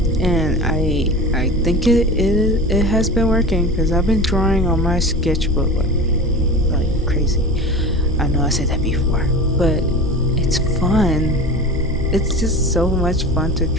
And I think it has been working because I've been drawing on my sketchbook like crazy. I know I said that before, but it's fun. It's just so much fun to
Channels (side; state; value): both; normal; correlation 0.33